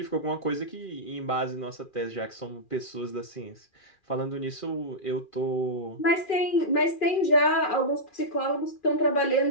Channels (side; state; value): right; late; 2.4 ms